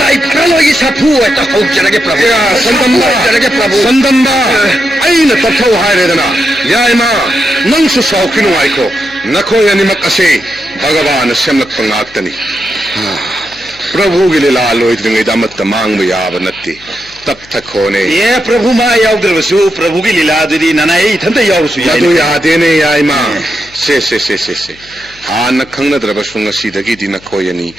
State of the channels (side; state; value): left; noise; hum, 24 dB below the sound